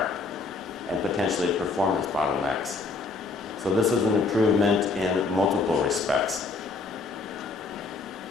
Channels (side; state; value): right; quieter; 3.9 dB